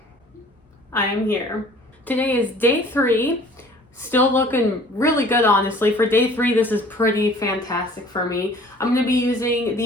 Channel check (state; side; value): normal; both; correlation 0.51